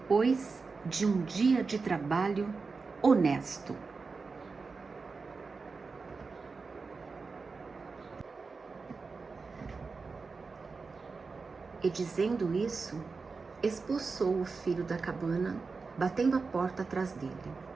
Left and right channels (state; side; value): quieter; left; 4.4 dB